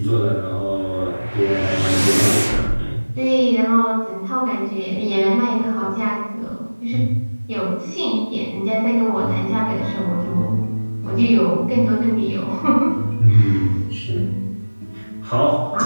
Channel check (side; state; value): both; inverted; correlation -1.00